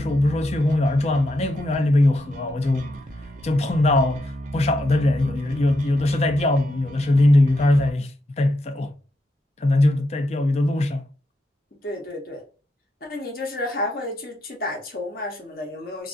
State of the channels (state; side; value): normal; both; correlation 0.83